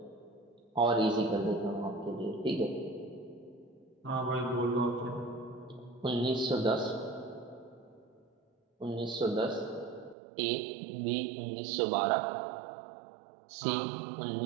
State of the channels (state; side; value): drops out; left; at 10.2 s